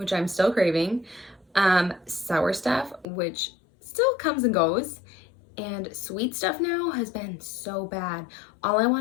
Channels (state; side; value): drops out; right; at 3.1 s